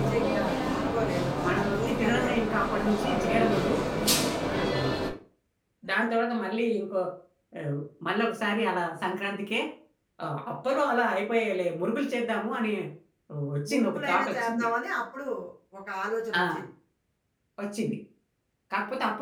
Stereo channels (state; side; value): identical; both; correlation 1.00